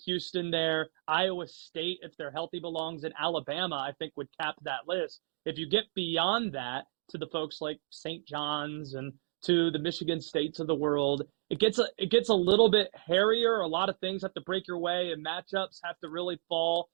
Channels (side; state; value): left; silent; digital silence